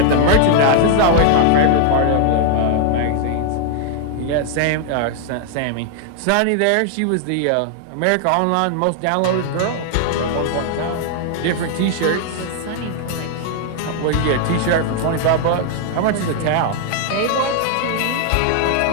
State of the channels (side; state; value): both; different; correlation 0.00